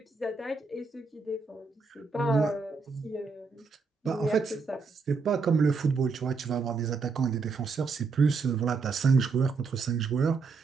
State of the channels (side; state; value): left; quieter; 4.6 dB